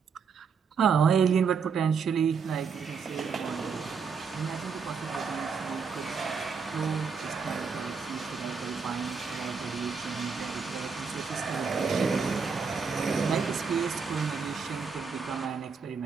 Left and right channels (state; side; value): quieter; left; 5.7 dB